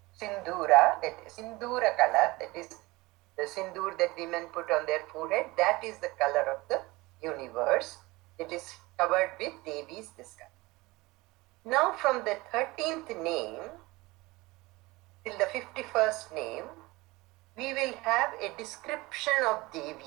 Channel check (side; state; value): left; quieter; 21.8 dB